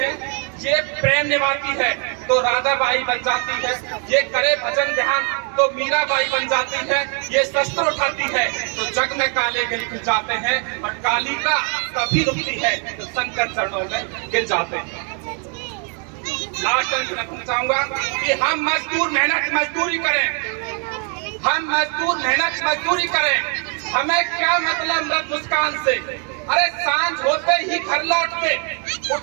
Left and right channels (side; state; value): left; quieter; 39.8 dB